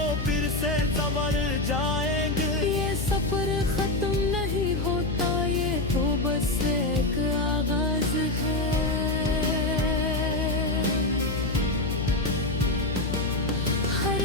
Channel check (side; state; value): left; noise; hum, 2 dB below the sound